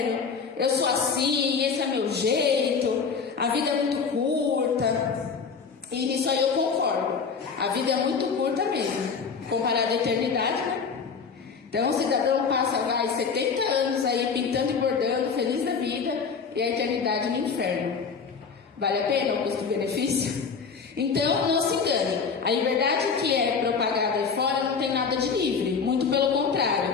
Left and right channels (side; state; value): right; quieter; 5.6 dB